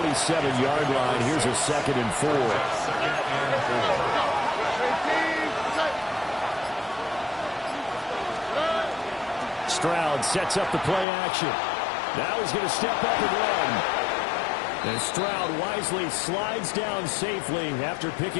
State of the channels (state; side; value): drops out; right; at 11.1 s